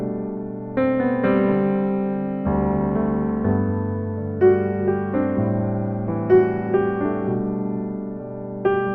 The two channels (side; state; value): both; identical; correlation 1.00